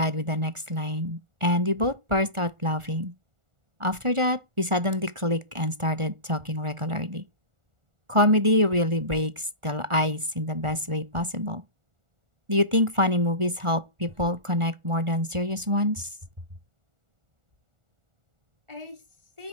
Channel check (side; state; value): left; late; 1.4 ms